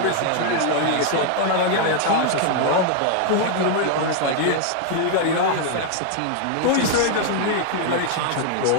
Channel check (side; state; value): both; different; correlation 0.00